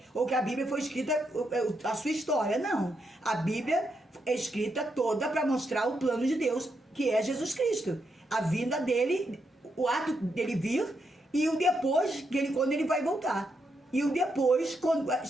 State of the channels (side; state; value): both; normal; correlation 0.81